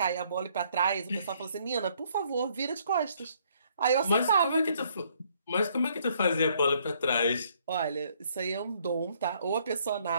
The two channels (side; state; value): both; inverted; correlation -0.66